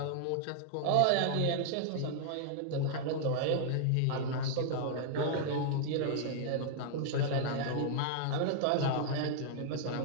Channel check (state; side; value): different; both; correlation -0.01